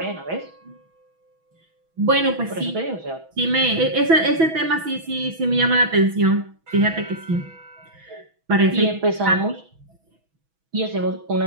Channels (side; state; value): left; late; 6.1 ms